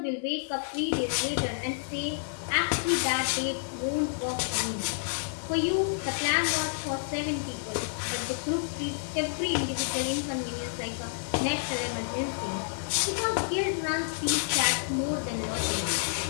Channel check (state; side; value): silent; right; digital silence